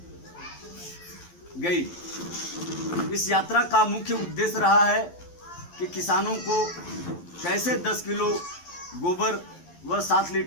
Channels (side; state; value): right; late; 11 ms